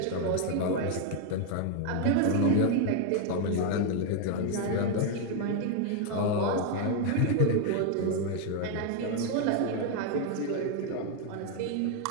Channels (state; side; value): different; both; correlation 0.01